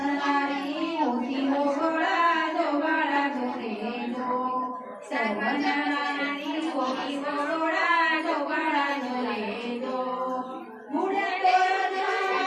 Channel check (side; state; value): both; identical; correlation 1.00